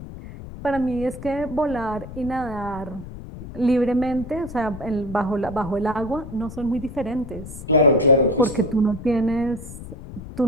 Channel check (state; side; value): noise; left; rumble, 12 dB below the sound